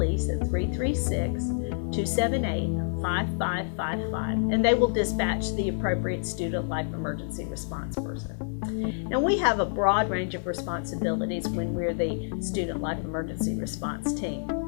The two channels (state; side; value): silent; right; digital silence